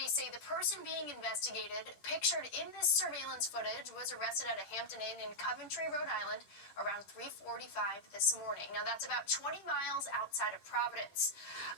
say the person being investigated, pictured in this surveillance footage, was arrested at a Hampton Inn in Coventry, Rhode Island, around 3:45 this morning. Now, that's about 20 miles outside of Providence.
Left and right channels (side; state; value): right; late; 11 ms